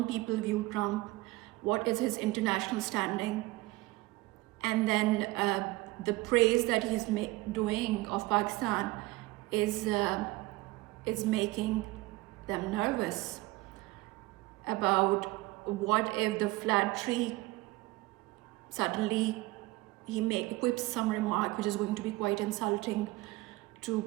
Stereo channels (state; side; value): quieter; left; 20.6 dB